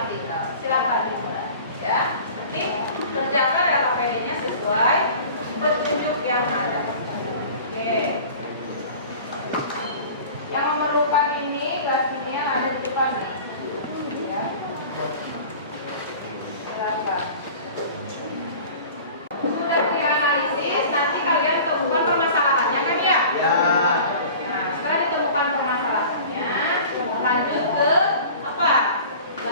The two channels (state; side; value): inverted; both; correlation -0.42